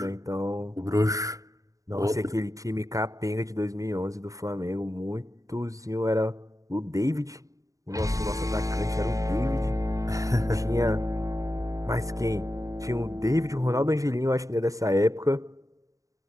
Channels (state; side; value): late; left; 0.16 ms